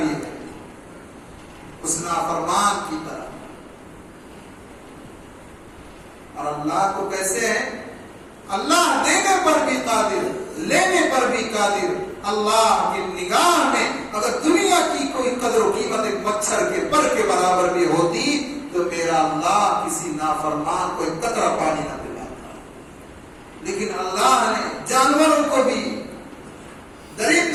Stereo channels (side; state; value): both; identical; correlation 1.00